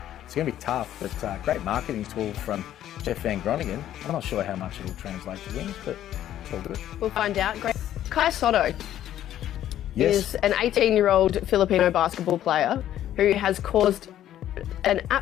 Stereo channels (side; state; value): right; quieter; 11.9 dB